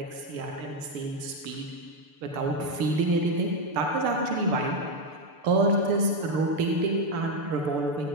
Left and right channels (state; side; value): late; left; 6.8 ms